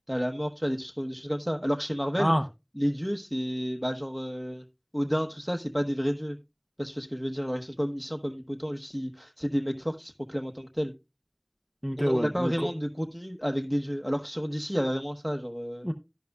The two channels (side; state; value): both; identical; correlation 1.00